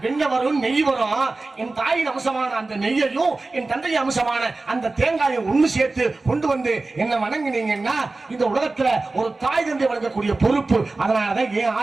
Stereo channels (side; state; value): left; quieter; 3.4 dB